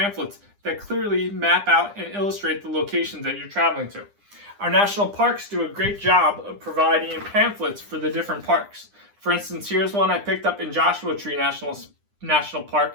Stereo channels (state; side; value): late; left; 9.9 ms